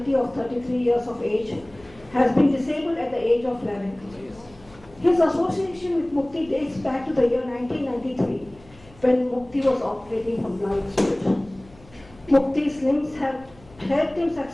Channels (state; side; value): noise; left; hum, 25 dB below the sound